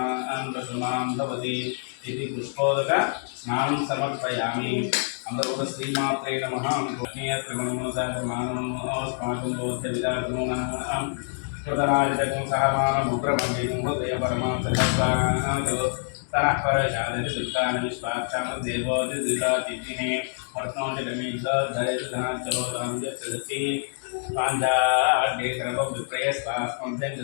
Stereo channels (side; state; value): right; silent; digital silence